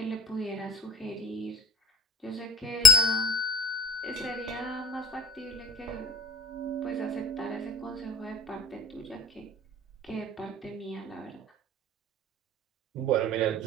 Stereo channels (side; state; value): both; normal; correlation 0.43